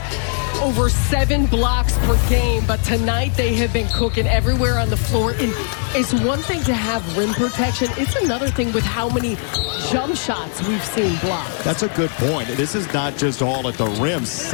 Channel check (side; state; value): right; silent; 56 dB below the other